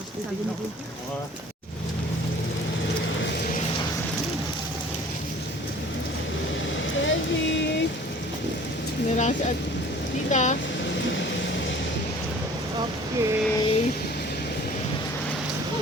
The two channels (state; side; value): normal; both; correlation 0.49